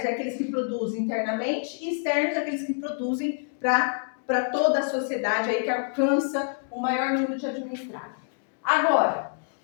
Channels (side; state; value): right; silent; digital silence